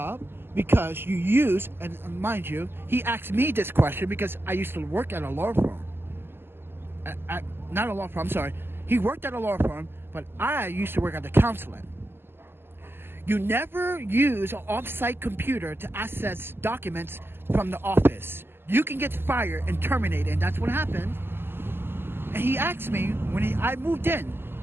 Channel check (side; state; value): left; late; 0.11 ms